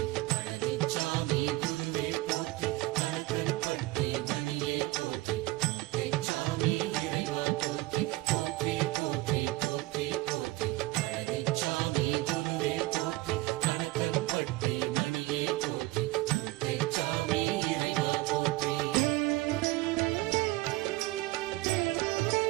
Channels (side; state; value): left; quieter; 19.7 dB